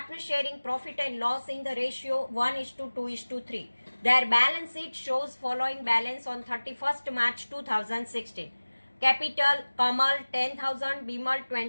sharing profit and loss in the ratio 1:2:3. Their balance sheet shows following balance on 31st March 2016. Capital, Kamal 10,000, Bimal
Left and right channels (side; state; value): both; inverted; correlation -1.00